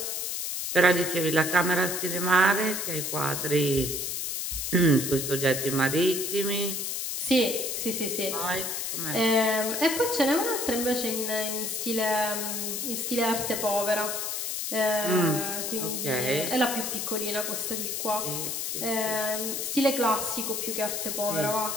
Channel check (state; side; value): noise; left; hiss, 2 dB below the sound